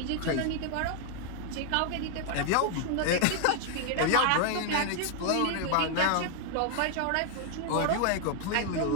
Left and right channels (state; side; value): different; both; correlation 0.00